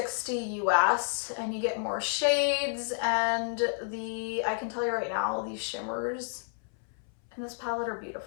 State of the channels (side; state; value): right; silent; 57 dB below the other